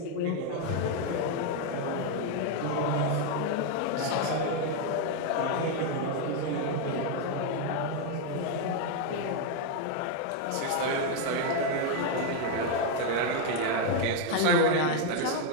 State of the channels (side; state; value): both; different; correlation 0.01